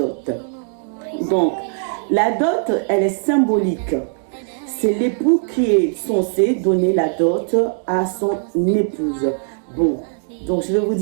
Donc, la dot, elle est symbolique. C'est l'époux qui est censé donner la dot à son épouse. Bon, donc je vais vous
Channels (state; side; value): silent; left; digital silence